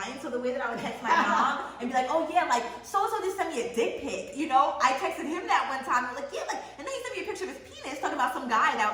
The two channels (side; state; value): both; identical; correlation 1.00